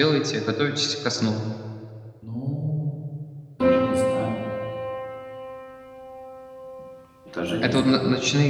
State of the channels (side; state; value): both; identical; correlation 1.00